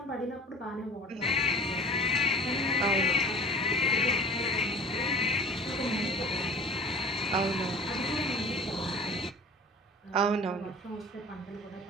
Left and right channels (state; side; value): normal; both; correlation 0.43